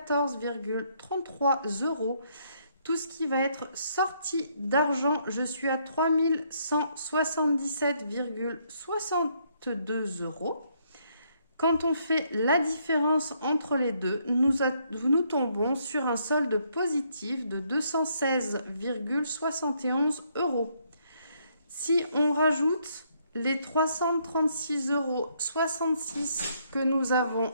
€. Tout ce qui va être sorti d'argent, je suis à 3177,62 €. Quand on fait la différence entre les deux, nous tombons sur un solde positif de 216,71 €. Si on rajoute les 336,66 € que nous avons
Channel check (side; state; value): both; inverted; correlation -0.71